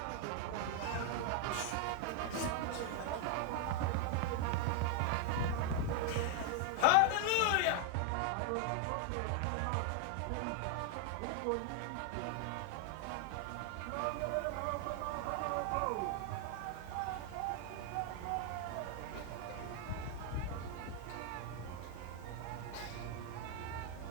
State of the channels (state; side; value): different; both; correlation 0.00